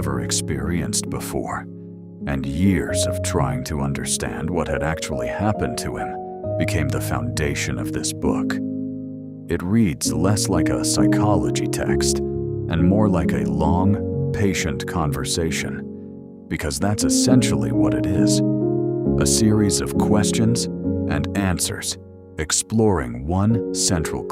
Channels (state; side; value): identical; both; correlation 1.00